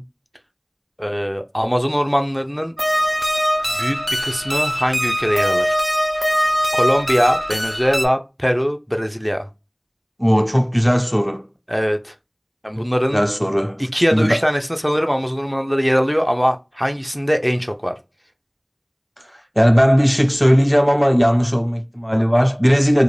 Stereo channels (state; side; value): identical; both; correlation 1.00